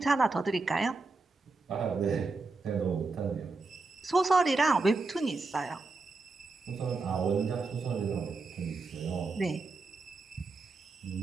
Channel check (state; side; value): quieter; left; 3.8 dB